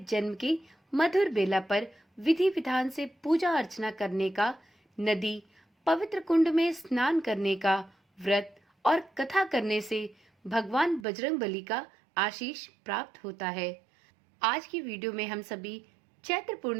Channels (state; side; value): drops out; left; at 11.1 s